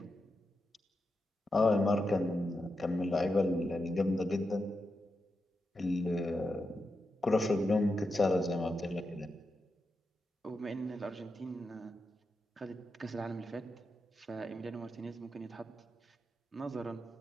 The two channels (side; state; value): both; normal; correlation 0.88